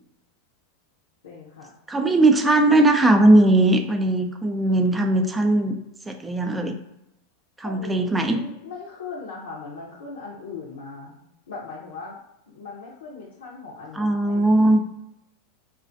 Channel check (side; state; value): both; normal; correlation 0.61